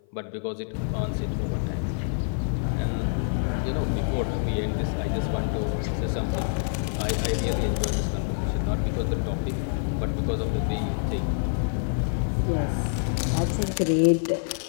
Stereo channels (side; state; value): right; silent; 55 dB below the other